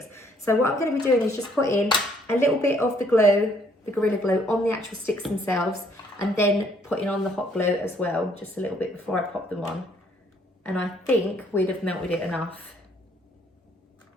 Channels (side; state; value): both; normal; correlation 0.65